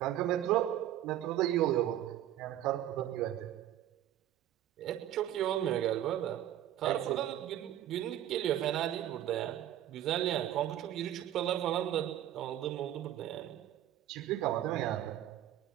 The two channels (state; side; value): quieter; left; 12.2 dB